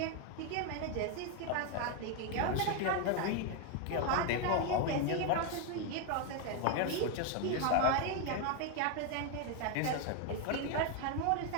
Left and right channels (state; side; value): different; both; correlation 0.01